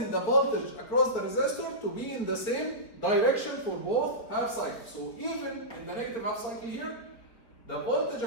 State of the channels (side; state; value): right; late; 4.1 ms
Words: the voltage across the resistor to be in the same direction for both half cycles. So even in the negative half cycle here, the voltage